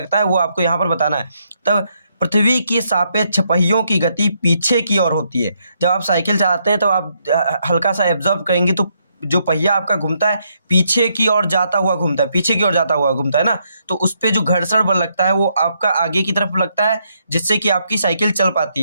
है वो आपको यहाँ पर बताना है। तब पृथ्वी के सापेक्ष पहियों की गति पीछे की ओर होती है। जब आप साइकिल चलाते हैं तो आप हल्का सा एब्जॉर्व करेंगे तो जो पहिया आपका घूमता है पीछे की ओर जाता हुआ घूमता है, पीछे की ओर जाता हुआ घूमता है ना, तो उस पर जो घर्षण बल लगता है वो आपका आगे की तरफ लगता है जिससे कि आपकी साइकिल चल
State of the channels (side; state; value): both; inverted; correlation -0.76